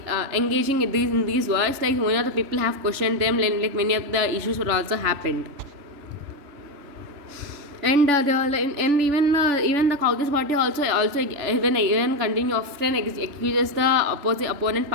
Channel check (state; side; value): late; left; 3.4 ms